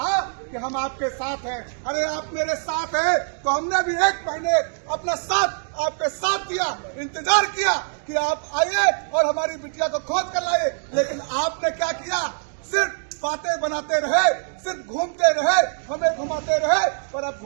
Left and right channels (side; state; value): left; silent; digital silence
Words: कि हम आपके साथ हैं। अरे आप मेरे साथ हैं तो हमने भी 1 महीने अपना साथ आपके साथ दिया, इंतजार किया कि आप आइए और हमारी बिटिया को खोज कर लाइए, लेकिन आपने क्या किया? सिर्फ बातें बनाते रहे, सिर्फ घूमते रहे, हमें घुमाते रहे। पर अब